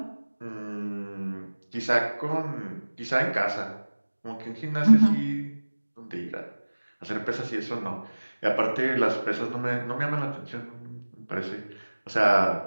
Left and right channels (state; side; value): inverted; both; correlation -1.00